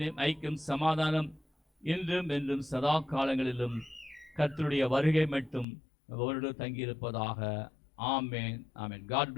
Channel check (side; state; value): right; drops out; at 5.7 s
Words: ஐக்கியம் சமாதானம் இன்றும் என்றும் சதா காலங்களிலும் கர்த்தருடைய வருகை மட்டும் அவரோடு தங்கியிருப்பதாக. ஆமேன், ஆமேன். God